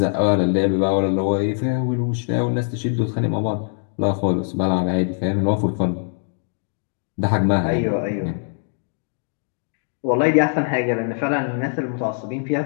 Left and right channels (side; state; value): right; silent; 64 dB below the other